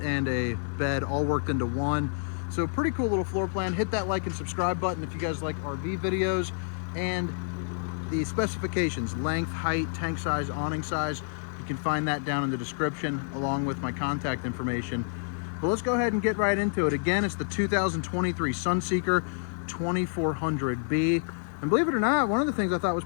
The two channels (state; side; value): silent; right; digital silence